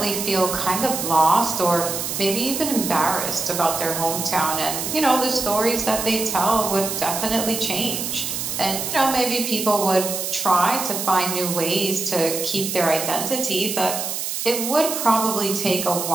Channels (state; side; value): noise; right; hiss, 3 dB below the sound